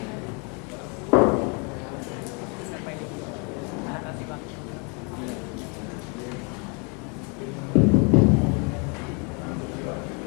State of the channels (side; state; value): right; quieter; 34.3 dB